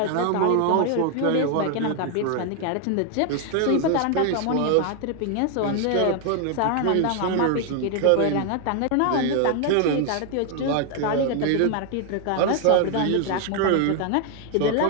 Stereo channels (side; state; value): both; different; correlation 0.00